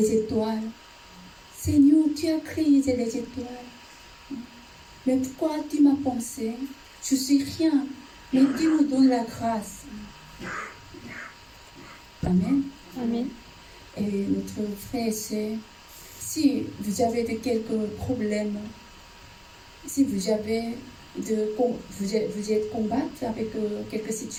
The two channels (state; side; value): identical; both; correlation 1.00